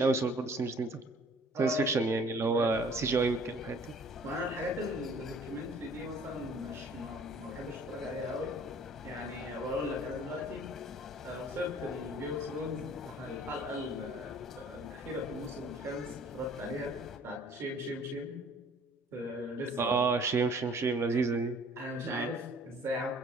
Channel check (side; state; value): both; normal; correlation 0.53